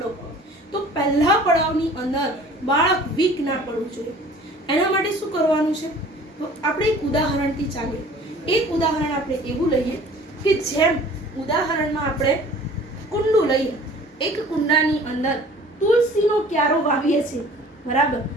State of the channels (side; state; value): both; normal; correlation 0.48